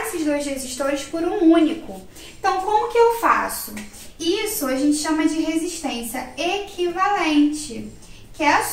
dois resistores por um único. Então, como que eu faço? Isso a gente chama de resistência equivalente, que é a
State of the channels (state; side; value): identical; both; correlation 1.00